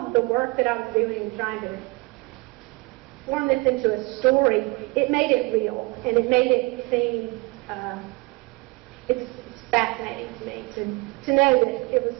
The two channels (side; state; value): left; quieter; 25.5 dB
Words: the work that I was doing and trying to form this into a story, it made it real, and it made it seem, it's fascinating to me to know that it was